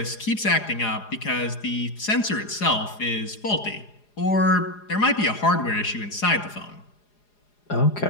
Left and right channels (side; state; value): right; late; 4.8 ms